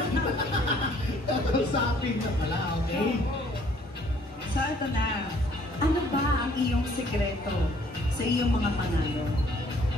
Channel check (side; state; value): both; normal; correlation 0.60